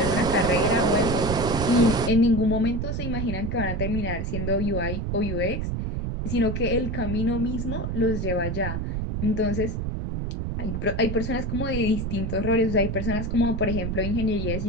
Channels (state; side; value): noise; right; rumble, 2 dB below the sound